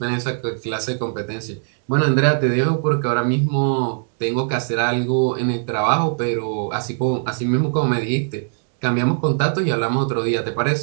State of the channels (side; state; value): left; silent; 61 dB below the other